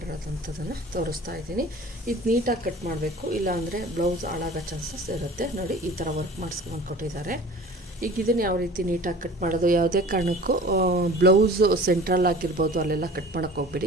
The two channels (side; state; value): both; normal; correlation 0.43